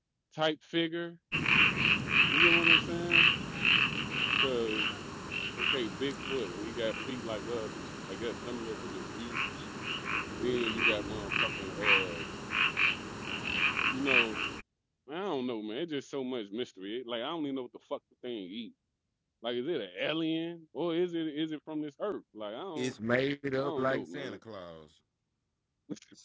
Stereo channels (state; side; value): identical; both; correlation 1.00